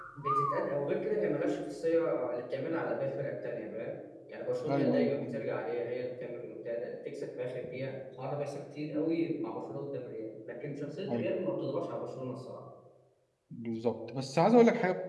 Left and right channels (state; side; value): identical; both; correlation 1.00